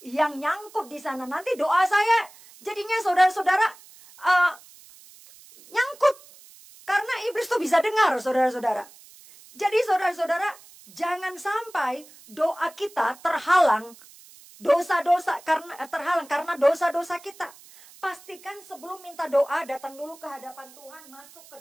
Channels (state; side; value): noise; right; hiss, 23 dB below the sound